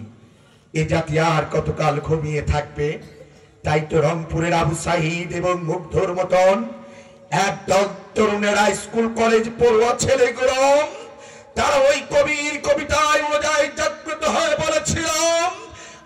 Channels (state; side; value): identical; both; correlation 1.00